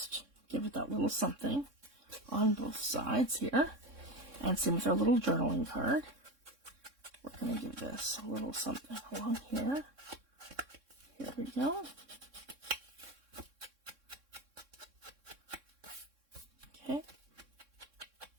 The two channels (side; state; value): left; late; 3.6 ms